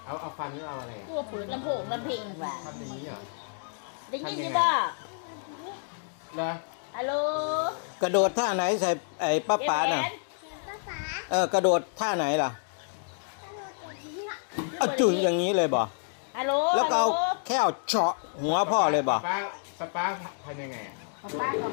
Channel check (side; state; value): right; silent; digital silence